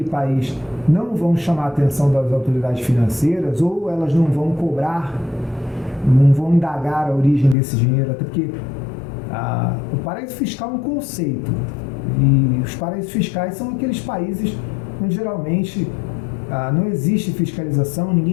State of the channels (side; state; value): right; drops out; at 7.6 s